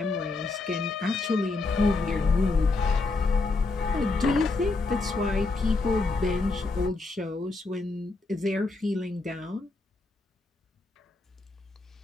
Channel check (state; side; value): quieter; right; 3.5 dB